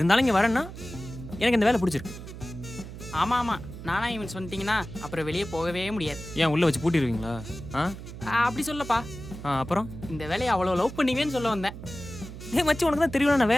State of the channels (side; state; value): right; noise; hum, 12 dB below the sound